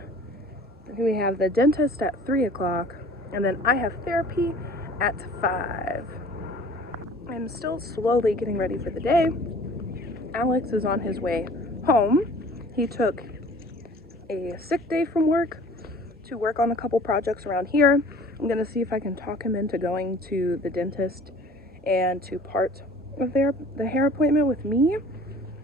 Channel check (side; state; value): both; normal; correlation 0.48